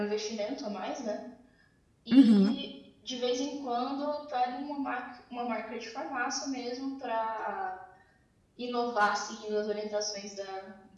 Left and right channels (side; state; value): both; identical; correlation 1.00